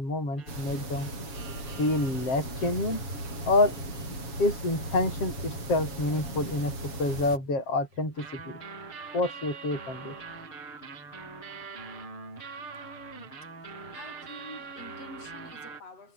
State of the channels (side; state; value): right; late; 7.1 ms